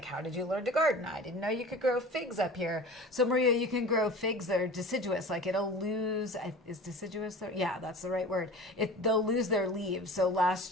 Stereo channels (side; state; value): both; normal; correlation 0.38